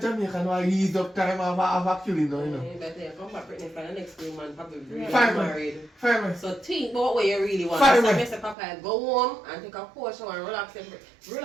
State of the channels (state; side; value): drops out; left; at 8.6 s